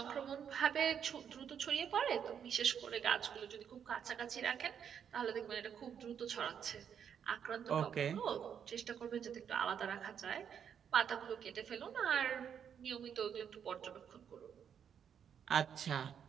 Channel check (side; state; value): left; quieter; 8.1 dB